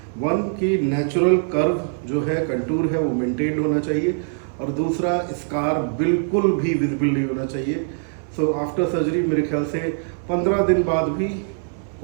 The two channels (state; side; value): silent; left; 64 dB below the other